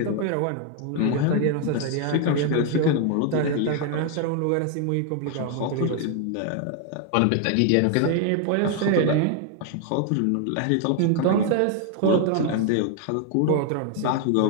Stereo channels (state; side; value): different; both; correlation 0.00